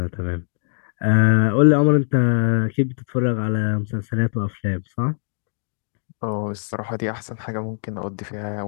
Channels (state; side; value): silent; right; digital silence